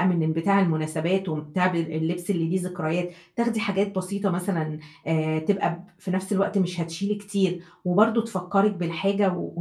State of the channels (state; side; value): identical; both; correlation 1.00